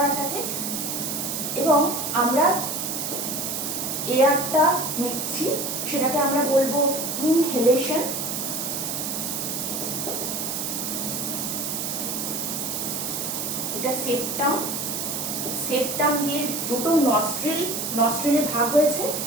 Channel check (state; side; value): noise; right; hiss, 3 dB below the sound